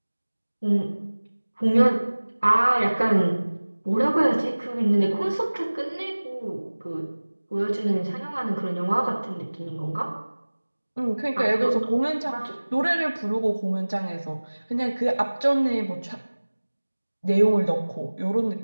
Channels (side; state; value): both; inverted; correlation -1.00